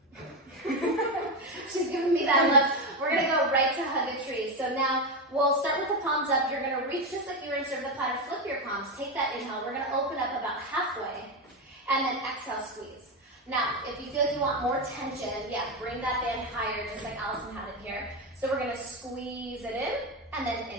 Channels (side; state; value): both; normal; correlation 0.13